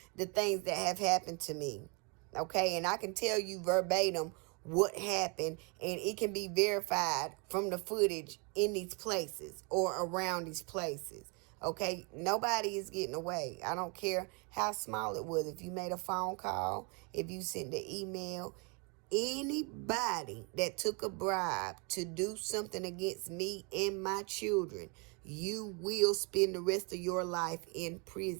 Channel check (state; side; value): quieter; left; 33.0 dB